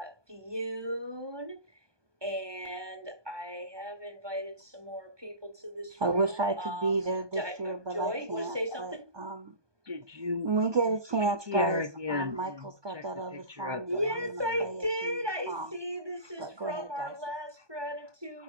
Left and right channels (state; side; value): late; left; 1.2 ms